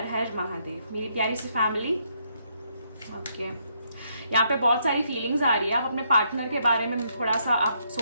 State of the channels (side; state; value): both; inverted; correlation -0.74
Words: हर महादेव मेरी प्यारी सी फैमिली। ओके, यहाँ पे बहुत सारी फीलिंग्स आ रही है। आप अपने पार्टनर के बारे में थोड़ा सा आप